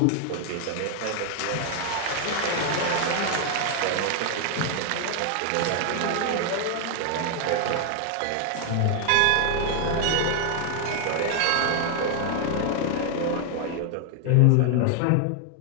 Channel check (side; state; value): both; different; correlation 0.00